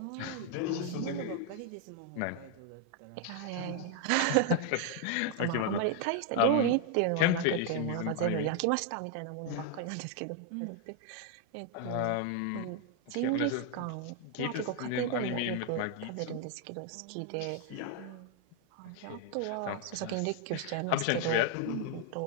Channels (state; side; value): different; both; correlation 0.00